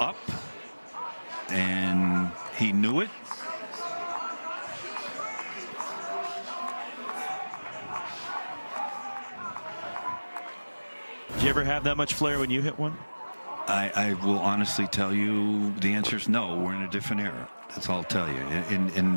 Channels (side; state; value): both; inverted; correlation -1.00